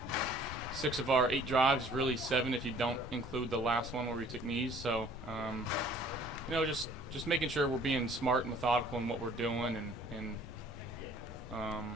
6 of our 8 drives, really 7 if you don't include the last one where we took knees. So, just making sure we're being smart and methodical in what we're doing, and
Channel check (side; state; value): both; normal; correlation 0.55